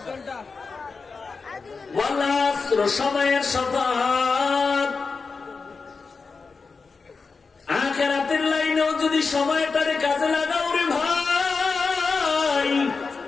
সময়ের শপথ। আখিরাতের লাইনেও যদি সময়টারে কাজে লাগাও রে ভাই,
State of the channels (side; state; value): right; quieter; 4.6 dB